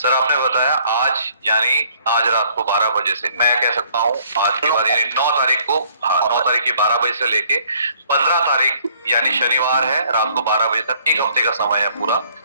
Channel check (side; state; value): both; inverted; correlation -0.61